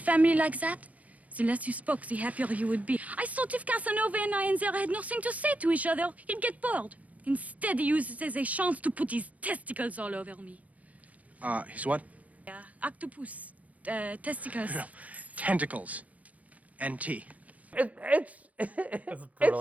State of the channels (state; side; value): late; left; 0.071 ms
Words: like that, the less you spoke, the happier you would be. I thought if Casanova and I had nothing to say to each other, he'd get bored. Instead, he uses it as a chance to put his testicles all over me. His what? Yeah, octopus, testicles. Tentacles. NT. It's